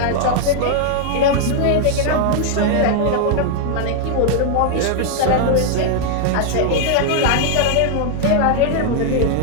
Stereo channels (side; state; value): both; different; correlation 0.00